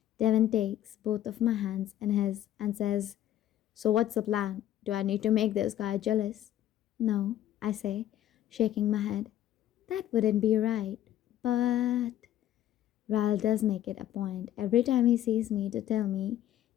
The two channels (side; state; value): right; quieter; 12.3 dB